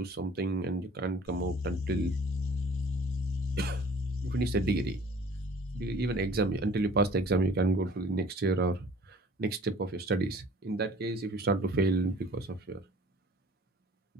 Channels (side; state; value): both; normal; correlation 0.51